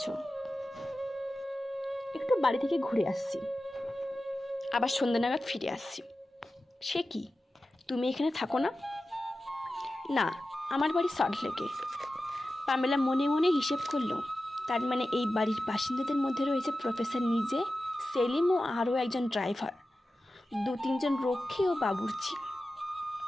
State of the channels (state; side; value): normal; both; correlation 0.94